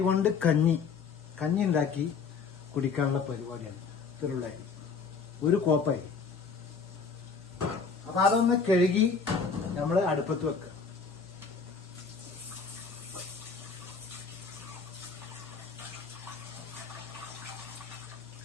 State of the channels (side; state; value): right; quieter; 5.3 dB